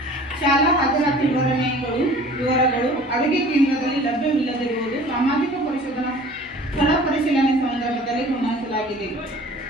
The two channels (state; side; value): normal; both; correlation 0.47